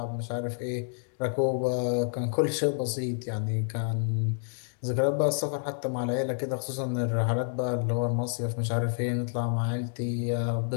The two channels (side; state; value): right; silent; digital silence